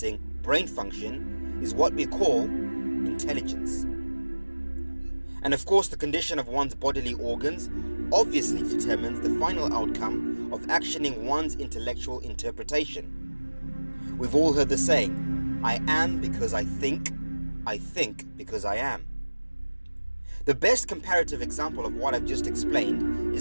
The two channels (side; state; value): both; inverted; correlation -1.00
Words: brain function, is what we call intelligence. And of course, the condition of one's bodily organs obviously determines the final outcome of actioning one's intellectual interpretation. We've all heard the saying, I am because I think because I am. The best comparative example of what I've just explained